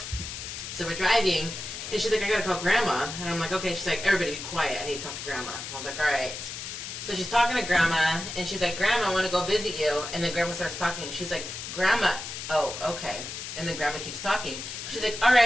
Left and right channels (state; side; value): noise; left; hiss, 8 dB below the sound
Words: So we're driving, and she's like, I gotta call Grandma, and I'm like, okay. She's like, everybody be quiet. I need to talk to Grandma. I was like, all right. So she's talking to Grandma, and she's like, Grandma, I want to go visit you. And then Grandma starts talking, and she's like, Grandma, oh, okay. And then Grandma keeps talking. She's like, all